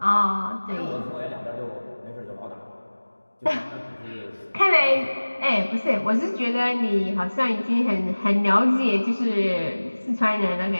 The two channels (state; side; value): inverted; both; correlation -1.00